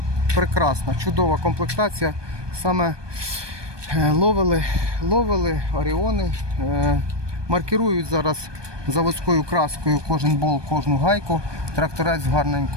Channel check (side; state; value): left; late; 1.2 ms